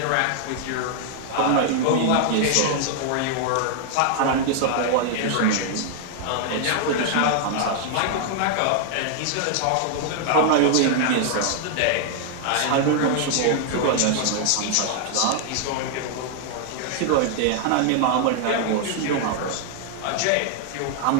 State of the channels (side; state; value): both; different; correlation 0.00